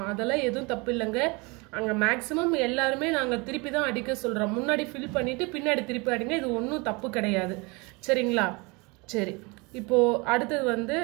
அதெல்லாம் எதுவும் தப்பு இல்லைங்க. அங்கே மேக்ஸிமம் எல்லாருமே நாங்கள் திருப்பி தான் அடிக்க சொல்கிறோம். முன்னாடி ஃபில் பண்ணிவிட்டு பின்னாடி திருப்பி அடிங்க, இது ஒன்றும் தப்பு கிடையாது. சரிங்களா? சரி, இப்போது அடுத்தது வந்து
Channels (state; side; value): quieter; left; 27.6 dB